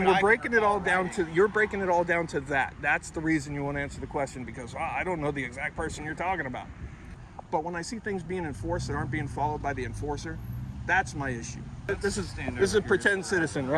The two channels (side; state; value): both; identical; correlation 1.00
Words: we're breaking it all down to. You're breaking it all down to that. That's the reason you won't answer the question, because I don't know the exact person you're talking about. But when I see things being enforced that aren't being followed by the enforcer, that's my issue. This is a pretend citizen,